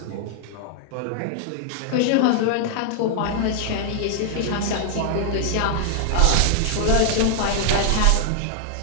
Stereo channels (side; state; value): both; different; correlation 0.00